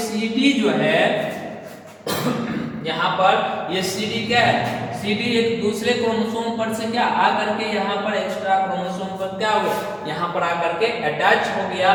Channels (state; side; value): identical; both; correlation 1.00